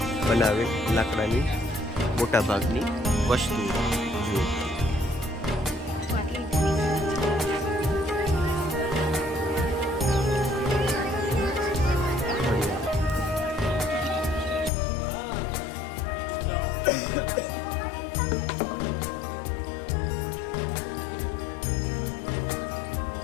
બનાવેલ લાકડાની મોટા ભાગની વસ્તુઓ. જુઓ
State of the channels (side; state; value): right; drops out; at 14.7 s